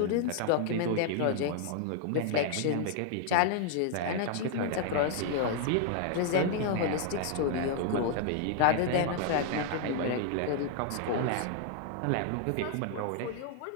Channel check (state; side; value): different; both; correlation 0.00